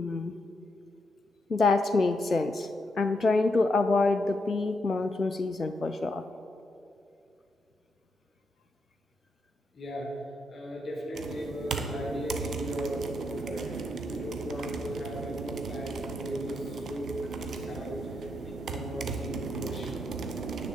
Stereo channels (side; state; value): both; normal; correlation 0.80